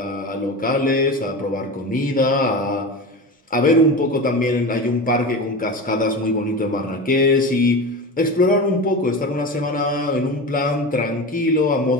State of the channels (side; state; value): both; normal; correlation 0.27